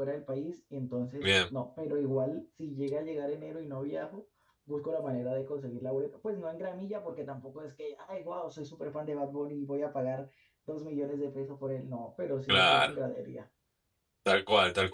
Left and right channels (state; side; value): identical; both; correlation 1.00